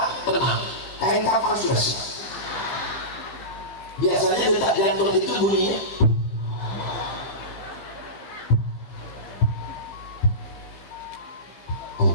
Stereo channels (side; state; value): right; late; 15 ms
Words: tenang. Kain kafan sudah siap. Biasanya detak jantung itu bunyinya